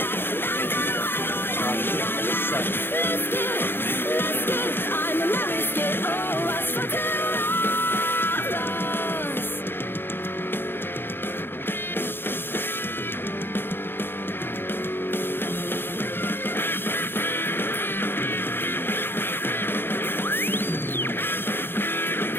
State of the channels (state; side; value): late; right; 0.10 ms